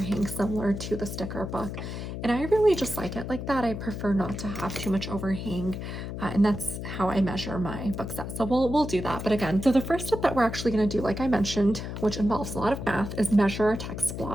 similar to the sticker book, and I really just like it like that. I prefer not to have too much overhang, and that's how I measure my book set. So we'll do that. But again, so the first step that we're actually going to do, like I mentioned, which involves a lot of math, is measure our text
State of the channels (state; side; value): noise; left; hum, 6 dB below the sound